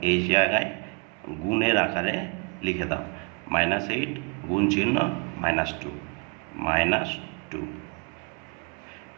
এই জায়গায় গুণের আকারে লিখে দাও। -8 গুণ চিহ্ন -2, -2,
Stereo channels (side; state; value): left; quieter; 32.5 dB